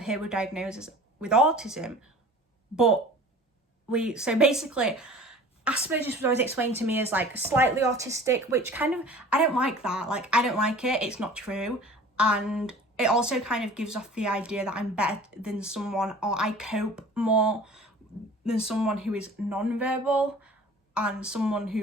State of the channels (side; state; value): both; normal; correlation 0.44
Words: were diagnosed with autism. But so basically, Asperger's was always explained to me as like slightly autistic, which kind of, I don't like that. Like, I don't like it. It's not true. And it also kind of gives off the idea that I'm better than someone, or I cope more than someone who is non-verbal, and someone